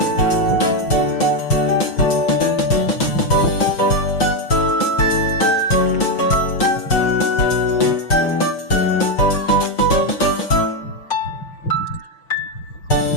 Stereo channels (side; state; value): right; late; 6.0 ms